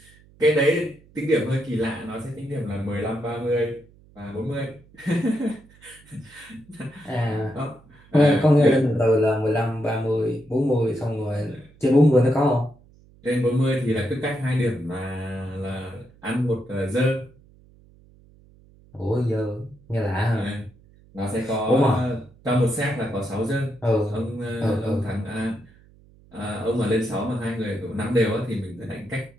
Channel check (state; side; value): noise; right; hum, 27 dB below the sound